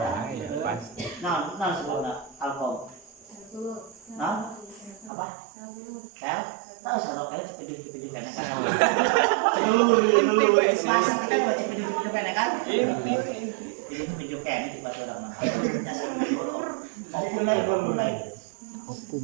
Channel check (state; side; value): drops out; left; at 5.1 s